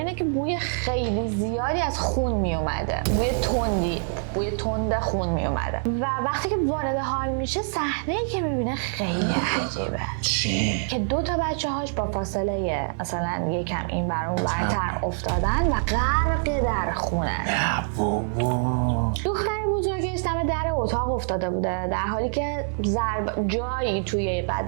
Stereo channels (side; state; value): left; silent; 62 dB below the other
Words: که بوی خیلی زیادی از خون میومده، بوی تند خون میومده و وقتی که وارد حال میشه صحنه‌ای که میبینه خیلی عجیبه. چی؟ که 2 تا بچه‌هاش با فاصله مثلا یکم این بر اون برتر افتادن و غرق در خونه. دختر بزرگش دم در اتاق افتاده بوده در حالی که جایی توی